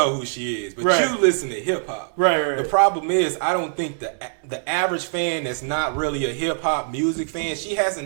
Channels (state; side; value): silent; left; digital silence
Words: who she is, but Right. you listen to hip hop. Right. The problem is, I don't think the average fan that's not really a hip hop music fan, she